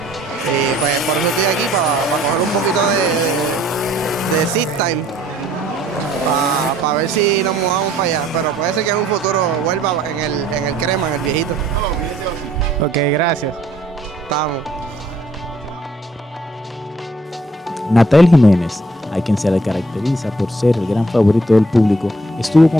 Y pues por eso estoy aquí, para coger un poquito de seat time, para ver si nos mudamos para allá. Pero puede ser que en un futuro vuelva en el crema, en el viejito. Ok, gracias. Estamos. Natael Jiménez, a quien se le caracteriza por ser el gran favorito del público, estuvo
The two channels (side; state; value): both; normal; correlation 0.62